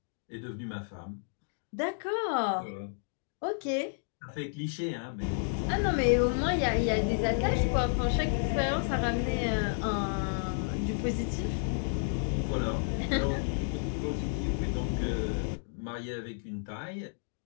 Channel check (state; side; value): silent; right; digital silence